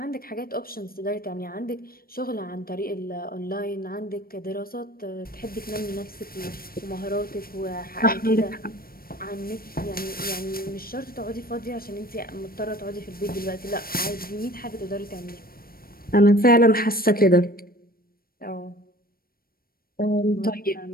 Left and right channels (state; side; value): late; right; 0.43 ms